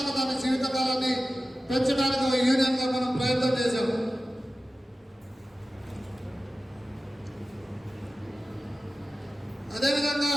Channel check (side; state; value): both; normal; correlation 0.95